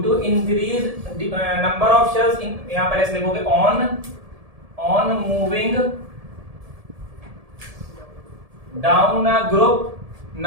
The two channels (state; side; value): late; left; 1.7 ms